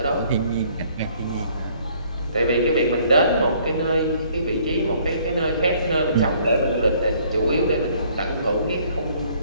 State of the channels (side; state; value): both; inverted; correlation -0.61